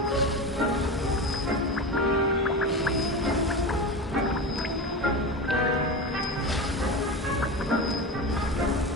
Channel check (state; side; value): normal; both; correlation 0.25